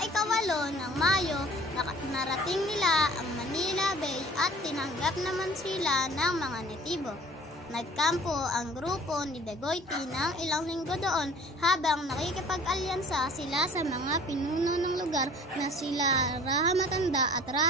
ng Mayo, narating nila ang Manila Bay at tinanggap naman sila ng mga netibo. Nagkampo ang grupo ni Dagoiti ng ilang linggo doon habang nakikipag-alyansa sila sa mga pinuno ng lugar na sila Raha Matanda at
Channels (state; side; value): normal; both; correlation 0.48